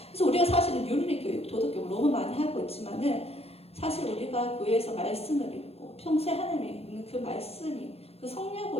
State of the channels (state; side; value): late; right; 0.29 ms